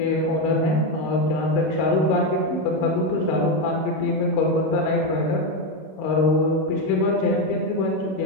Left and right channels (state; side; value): late; right; 32 ms